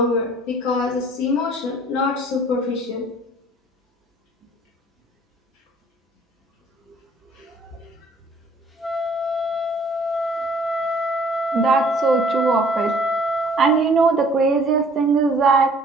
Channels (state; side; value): normal; both; correlation 0.56